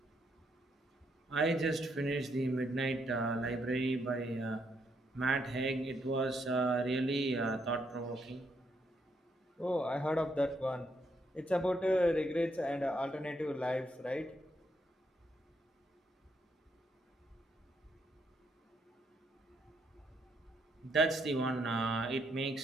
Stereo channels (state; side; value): normal; both; correlation 0.76